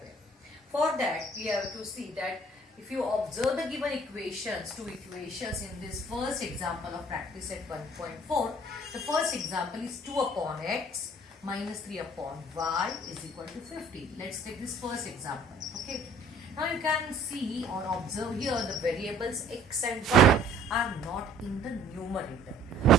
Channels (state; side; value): normal; both; correlation 0.55